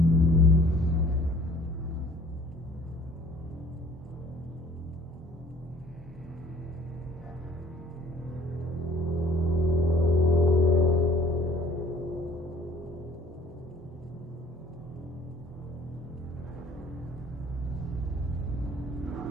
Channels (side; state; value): both; normal; correlation 0.53